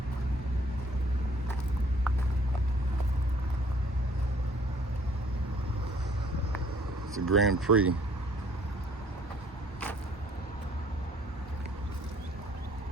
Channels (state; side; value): normal; both; correlation 0.59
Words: It's a Grand Prix.